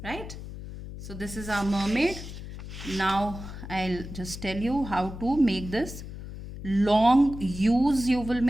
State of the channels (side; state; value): left; noise; hum, 11 dB below the sound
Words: Right? So this is our mermaid. Now I'll just tell you how to make this. Long U's you will